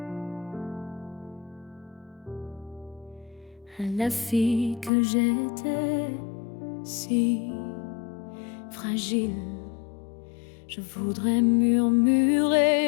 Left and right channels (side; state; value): right; drops out; at 4.9 s